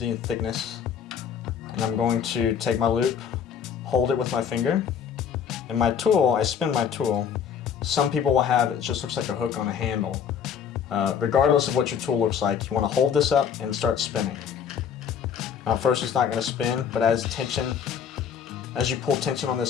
and thickness. And I'm going to take my loop, hold it with my finger, and my tool, I spin my tool. Some people will have, it just looks like a hook on a handle. Regardless of what your tool looks like, you want to hold this up and start spinning. Now at first it's not going to spin, but as you pull tension on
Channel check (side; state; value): right; quieter; 7.8 dB